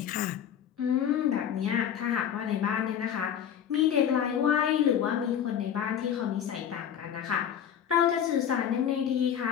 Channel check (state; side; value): quieter; right; 9.0 dB